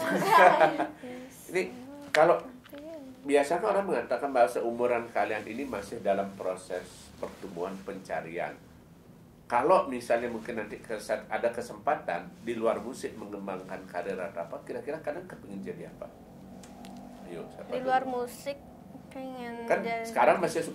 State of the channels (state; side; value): identical; both; correlation 1.00